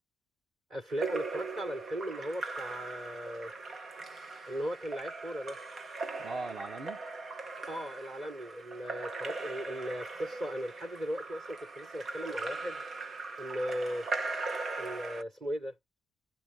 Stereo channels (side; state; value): both; normal; correlation 0.86